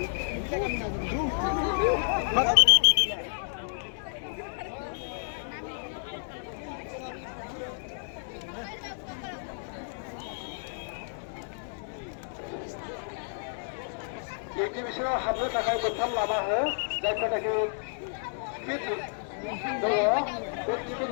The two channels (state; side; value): silent; right; digital silence